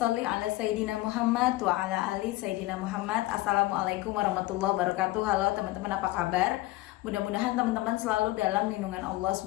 ala sayidina Muhammad wa ala ali sayidina Muhammad. Assalamualaikum warahmatullahi wabarakatuh. Halo teman-teman, apa kabar? Mudah-mudahan teman-teman selalu dalam lindungan Allah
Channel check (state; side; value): quieter; right; 18.5 dB